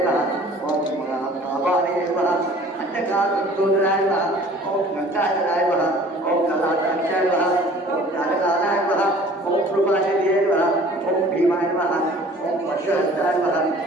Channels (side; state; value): both; normal; correlation 0.50